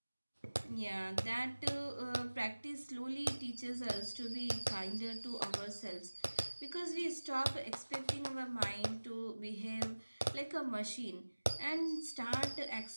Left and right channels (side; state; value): both; inverted; correlation -1.00